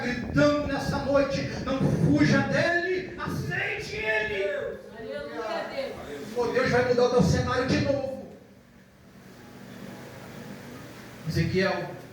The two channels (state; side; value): identical; both; correlation 1.00